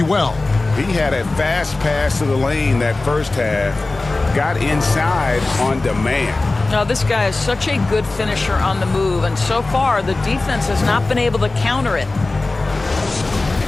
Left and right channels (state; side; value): quieter; right; 3.2 dB